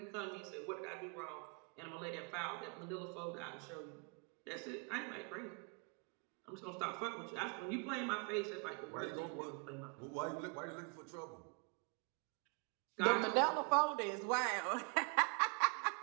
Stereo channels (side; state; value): left; quieter; 35.7 dB